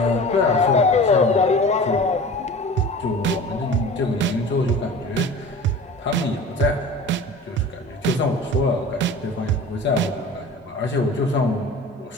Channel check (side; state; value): both; normal; correlation 0.38